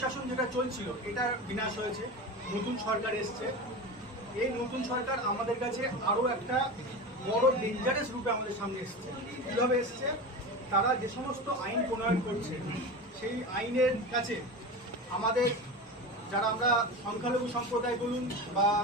যেটা চলছিল এটার বিনাশ হয়েছে, নতুন সরকার এসছে। এই নতুন সরকার আমাদের কাছে আরও একটা বড় ডেঞ্জারাস রূপে আমাদের সামনে এসছে। কীভাবে এসছে? তারা যে সমস্ত আইন প্রণয়ন করছে সেই আইনের কাছে আমাদের যারা আমরা সংখ্যালঘু সম্প্রদায় বলুন বা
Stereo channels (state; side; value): normal; both; correlation 0.27